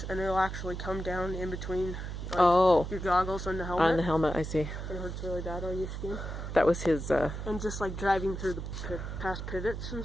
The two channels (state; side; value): noise; right; hum, 6 dB below the sound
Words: and it'll actually come down in between your goggles and the helmet. On the helmet, I see. It hurts really bad on your skin. That was his, And just like driving through the past pivots and